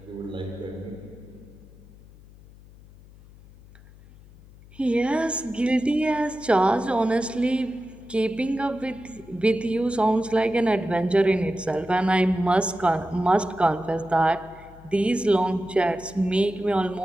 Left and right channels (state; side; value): noise; left; hum, 22 dB below the sound